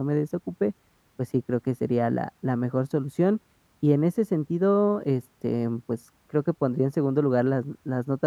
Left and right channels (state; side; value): identical; both; correlation 1.00